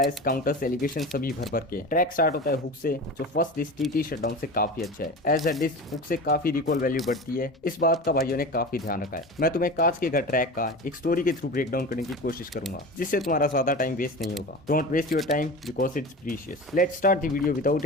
काउंटर्स एलिगेशन सभी भर भर के। ट्रैक स्टार्ट होता है हुक से, जो फर्स्ट डिस्क टीटी शटडाउन से काफी अच्छा है। एज अ डिस्क हुक से काफी रिकॉल वैल्यू बढ़ती है, इस बात का भाइयों ने काफी ध्यान रखा है। मैं तुम्हें कांच के घर ट्रैक का एक स्टोरी के थ्रू ब्रेकडाउन करने की कोशिश करूंगा, जिससे तुम्हारा ज्यादा टाइम वेस्ट नहीं होगा। Don't waste your time because it's precious. Let's start the video without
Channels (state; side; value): normal; both; correlation 0.31